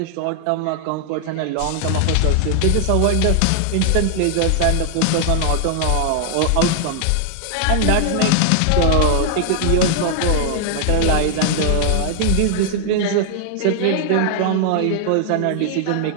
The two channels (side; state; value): both; different; correlation 0.00